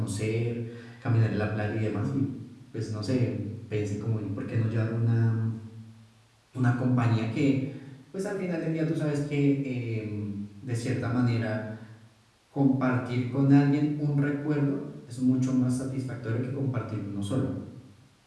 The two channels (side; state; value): both; identical; correlation 1.00